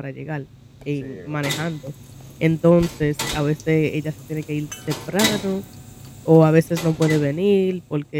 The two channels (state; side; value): identical; both; correlation 1.00